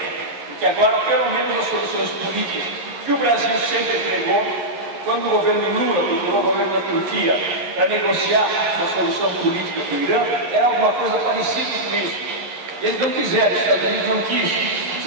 Porque agora, pelo menos as soluções políticas que o Brasil sempre entregou, quando o governo Lula procurou o governo da Turquia para negociar uma solução política com o Irã, era alguma coisa parecida com isso. Eles não quiseram, os Estados Unidos não quis,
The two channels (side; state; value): left; late; 11 ms